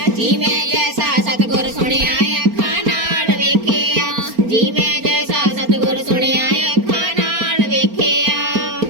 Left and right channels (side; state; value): left; late; 4.3 ms